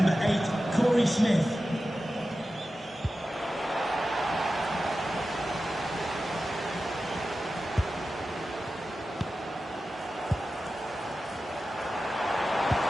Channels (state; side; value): normal; both; correlation 0.93